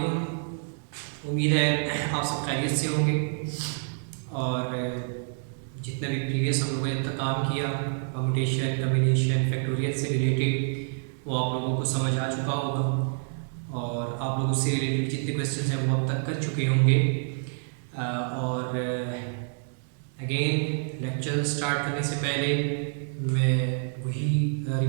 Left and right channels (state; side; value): silent; left; digital silence